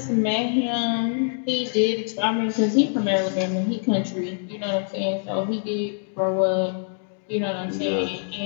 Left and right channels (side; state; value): right; silent; digital silence